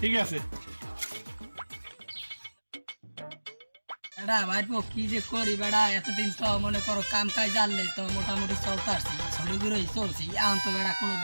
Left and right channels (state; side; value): inverted; both; correlation -1.00